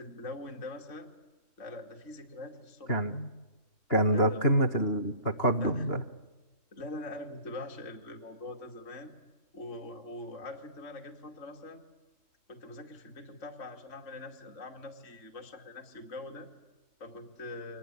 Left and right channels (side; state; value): right; late; 2.9 ms